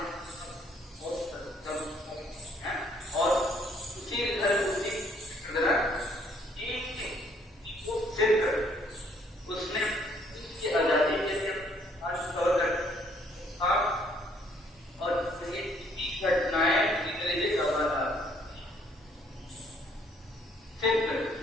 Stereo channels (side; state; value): both; normal; correlation 0.65